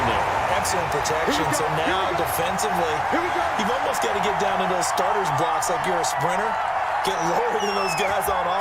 there. Excellent protection. So now, defensively, you've almost got to get down in those starters blocks like you're a sprinter. Get lower than those guys on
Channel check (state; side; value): identical; both; correlation 1.00